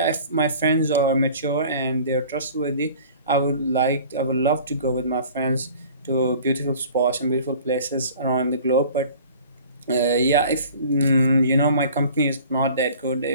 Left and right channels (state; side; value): inverted; both; correlation -0.46